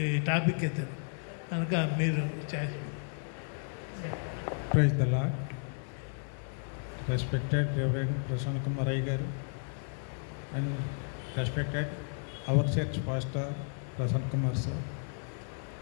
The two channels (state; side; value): silent; right; 56 dB below the other